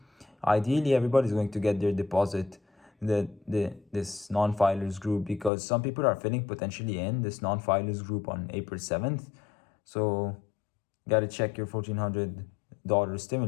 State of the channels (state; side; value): drops out; right; at 5.5 s